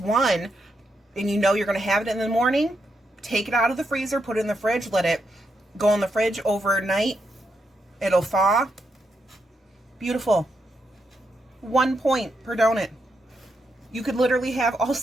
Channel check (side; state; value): both; normal; correlation 0.82